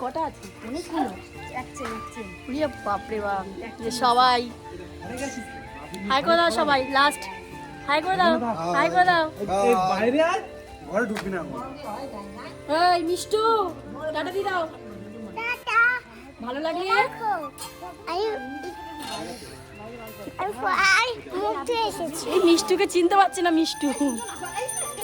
কটা আছে অনেকগুলো, উড়িয়ে বাপরে বাপ। যে সবাই হাই করে দাও, সবাই লাস্ট হাই করে দাও, হাই করে দাও। এই বাইরে আয়, ঘরে ঢুকবি না। এই মিষ্টু টাটা দি দাও, টাটা ভালো লাগলে। আমি মুখতে এসেছি। এই মিষ্টুকে চিনতে পারছি না, মিষ্টু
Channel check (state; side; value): identical; both; correlation 1.00